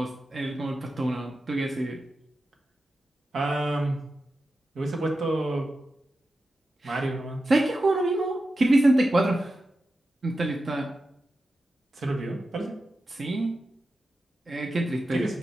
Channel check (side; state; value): both; normal; correlation 0.91